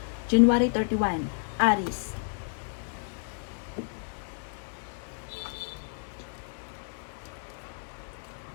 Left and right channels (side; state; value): right; silent; 57 dB below the other